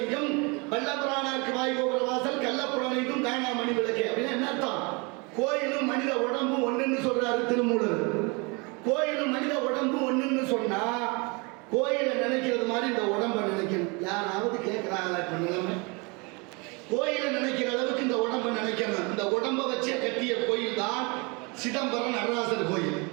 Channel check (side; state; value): left; quieter; 29.4 dB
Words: வல்லபுராணருக்கு வாய்கோபுர வாசல், கள்ளப்புலனைக்கும் காணா மணி விளக்கே. அப்படின்னா என்ன அர்த்தம்? கோயிலும் மனித உடம்பும் ஒண்ணுன்னு சொல்றாரு திருமூலர். கோயிலும் மனித உடம்பும் ஒண்ணுன்னு சொன்னா, கோயிலை நினைக்கிறது மாதிரி இந்த உடம்பை நினைக்கணும். யாராவது கேட்கிறாங்களா? இப்ப நிலைமை கோயிலை நினைக்கிற அளவுக்கு இந்த உடம்பை நினைக்கணும். இந்த உடம்பை வச்சே கட்டிய கோயில் தான் சிதம்பரம் நடராசர் கோயில்.